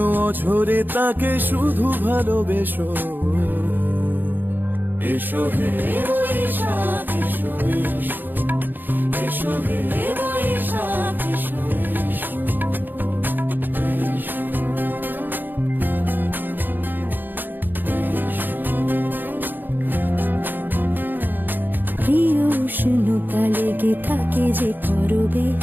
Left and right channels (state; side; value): late; left; 0.090 ms